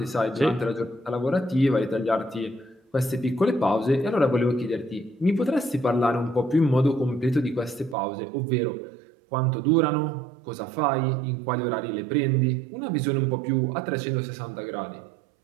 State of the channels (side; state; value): left; drops out; at 8.0 s